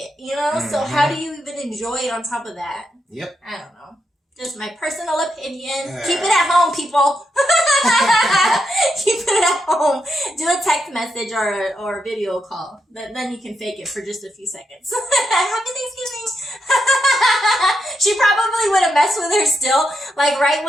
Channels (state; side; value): normal; both; correlation 0.82